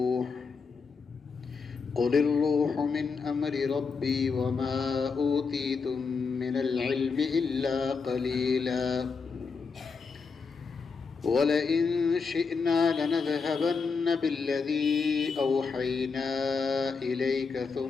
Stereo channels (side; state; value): right; quieter; 5.0 dB